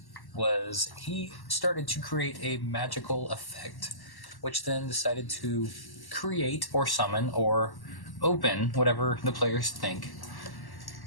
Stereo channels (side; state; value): right; late; 1.1 ms